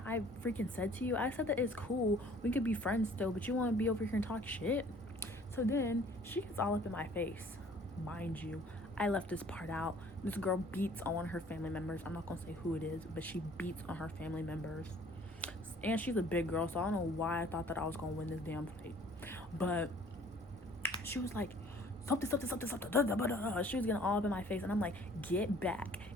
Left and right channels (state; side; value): normal; both; correlation 0.54